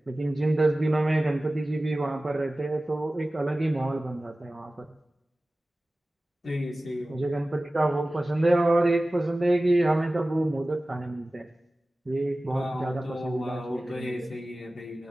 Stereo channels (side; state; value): both; normal; correlation 0.97